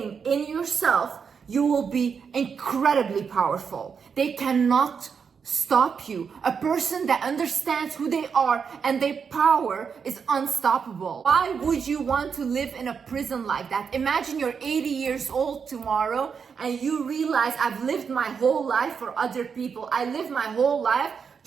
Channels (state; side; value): quieter; left; 6.3 dB